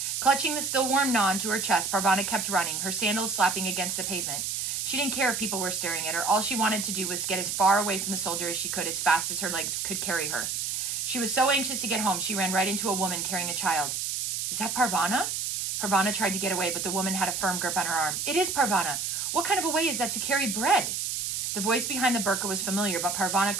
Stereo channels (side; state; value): right; noise; hiss, 2 dB below the sound